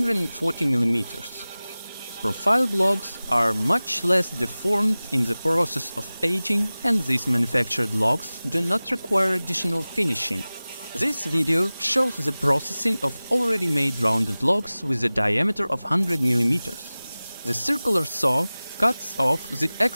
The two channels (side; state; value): both; inverted; correlation -0.98